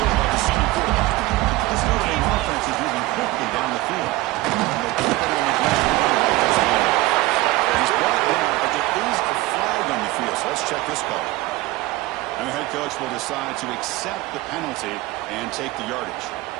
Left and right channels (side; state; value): left; quieter; 19.2 dB